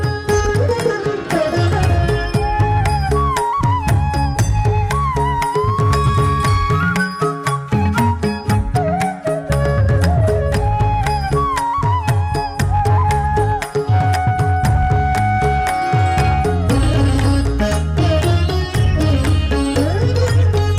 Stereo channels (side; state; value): both; identical; correlation 1.00